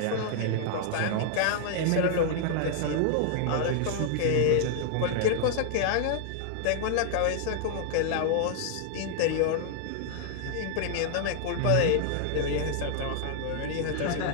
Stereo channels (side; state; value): both; different; correlation 0.00